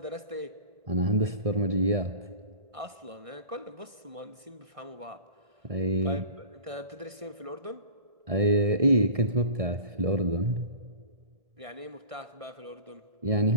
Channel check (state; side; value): late; left; 1.6 ms